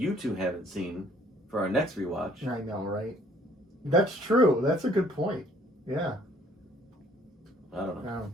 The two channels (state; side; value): normal; both; correlation 0.59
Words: two haven't seen for our next rewatch. I know, right? That's true. That's a good point. Yeah. I don't know.